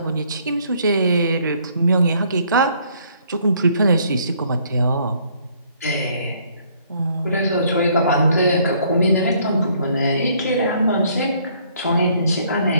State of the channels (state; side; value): inverted; both; correlation -0.64